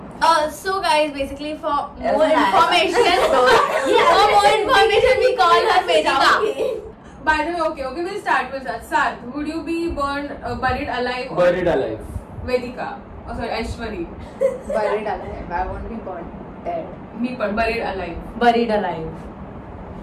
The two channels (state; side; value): identical; both; correlation 1.00